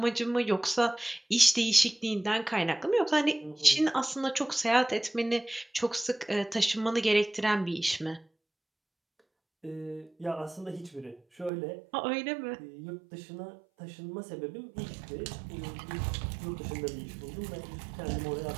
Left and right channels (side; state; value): left; drops out; at 11.5 s